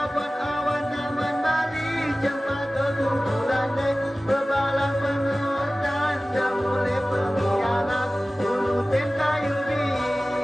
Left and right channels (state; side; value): normal; both; correlation 0.97